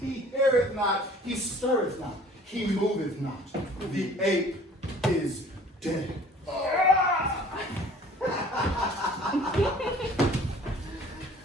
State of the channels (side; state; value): both; normal; correlation 0.51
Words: heareth not, he stirreth not, he moveth not. The ape is dead.